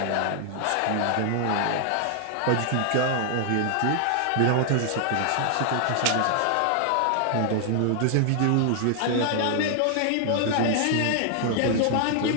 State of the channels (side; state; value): both; different; correlation 0.00